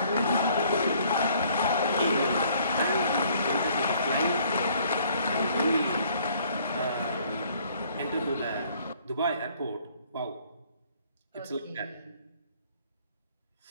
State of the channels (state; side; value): inverted; both; correlation -0.61